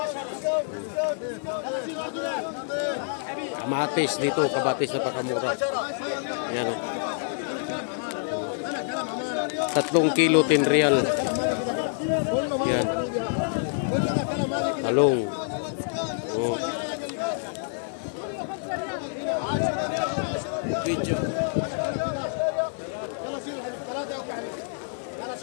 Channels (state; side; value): silent; right; digital silence